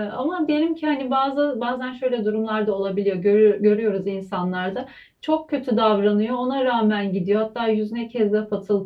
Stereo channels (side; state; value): both; identical; correlation 1.00